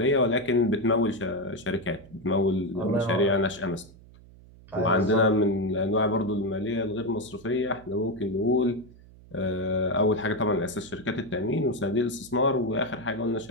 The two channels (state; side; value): noise; right; hum, 22 dB below the sound